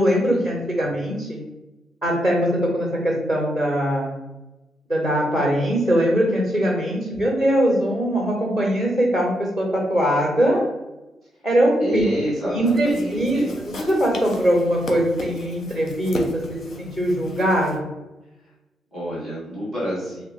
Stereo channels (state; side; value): normal; both; correlation 0.80